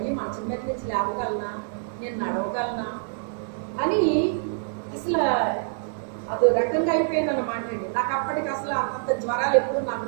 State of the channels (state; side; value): silent; left; digital silence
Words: మంచం మీద నుంచి లేవగలనా? నేను నడవగలనా అని అసలు అదో రకంగా అయిపోయింది అన్నమాట అండి. నాకు అప్పటికి అసలు అంత జ్వరాలు ఎప్పుడు నాకు